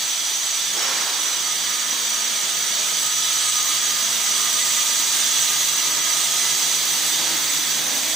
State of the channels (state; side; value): quieter; left; 3.1 dB